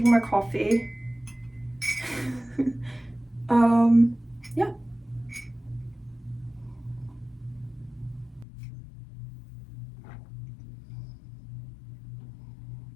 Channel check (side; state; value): right; drops out; at 8.5 s